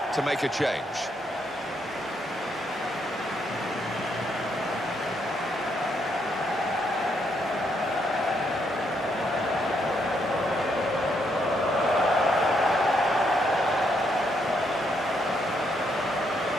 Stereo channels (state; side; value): normal; both; correlation 0.75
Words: to make a change.